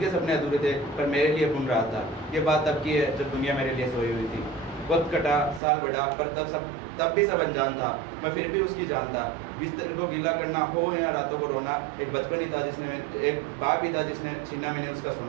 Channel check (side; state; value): left; drops out; at 5.6 s